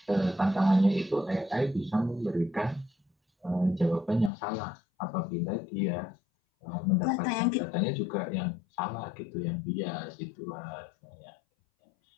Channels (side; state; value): right; drops out; at 4.3 s